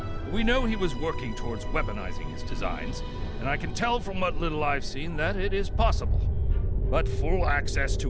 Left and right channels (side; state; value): both; identical; correlation 1.00